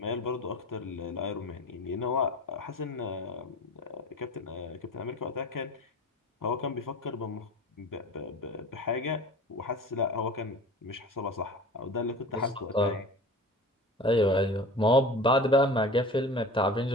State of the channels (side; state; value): both; normal; correlation 0.37